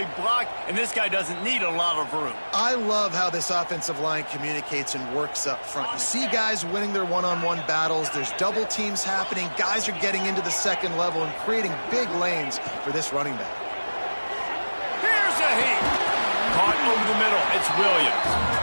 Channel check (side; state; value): both; inverted; correlation -1.00